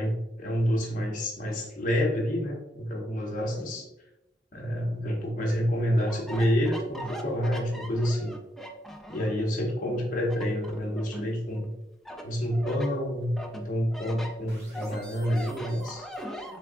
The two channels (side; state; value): both; normal; correlation 0.78